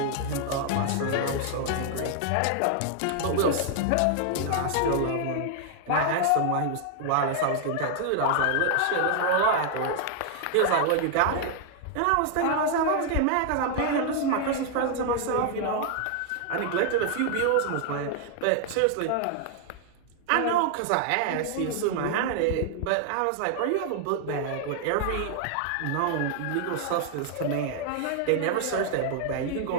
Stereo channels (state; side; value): different; both; correlation 0.00